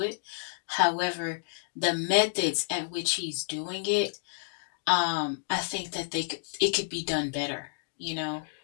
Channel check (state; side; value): silent; right; digital silence